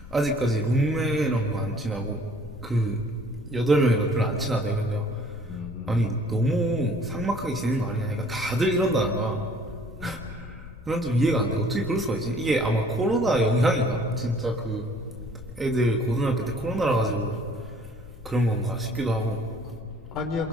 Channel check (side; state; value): left; noise; rumble, 16 dB below the sound